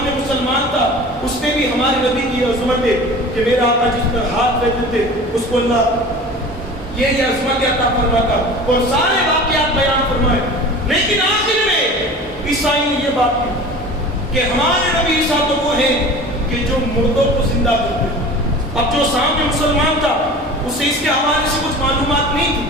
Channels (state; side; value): normal; both; correlation 0.39